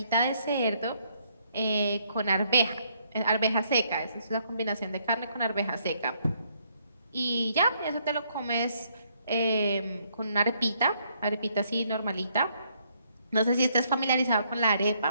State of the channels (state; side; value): inverted; both; correlation -0.70